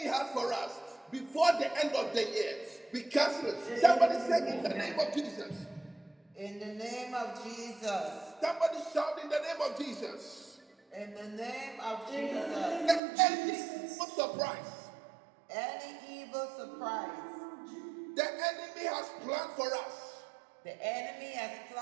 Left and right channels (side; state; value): left; drops out; at 13.0 s